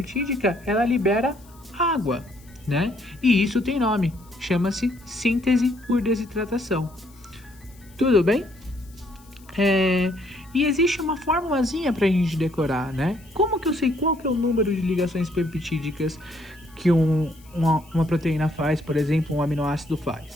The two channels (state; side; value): noise; left; hiss, 27 dB below the sound